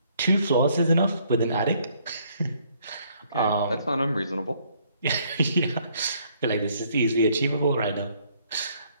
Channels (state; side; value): inverted; both; correlation -0.66